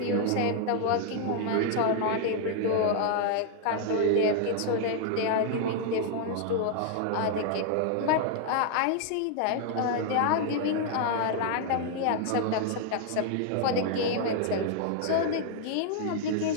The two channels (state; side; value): different; both; correlation 0.00